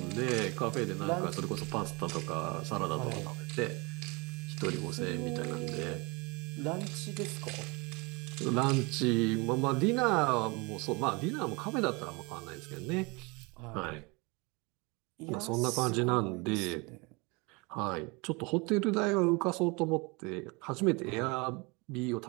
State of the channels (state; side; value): quieter; left; 27.8 dB